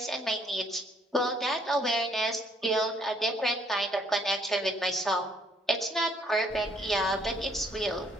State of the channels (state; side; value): normal; both; correlation 0.66